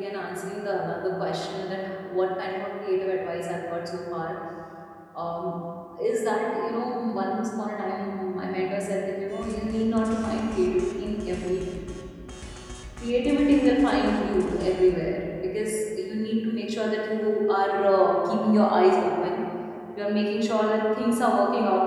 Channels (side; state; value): both; identical; correlation 1.00